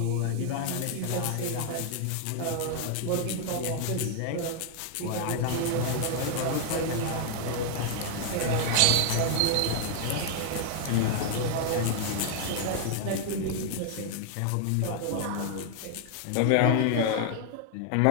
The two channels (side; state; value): both; different; correlation 0.00